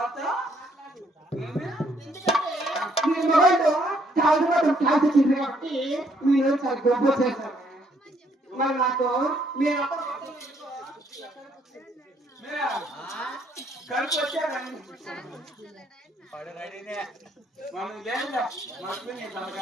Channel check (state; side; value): normal; both; correlation 0.68